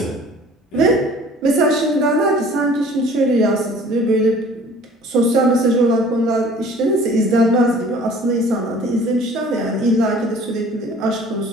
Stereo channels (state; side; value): normal; both; correlation 0.50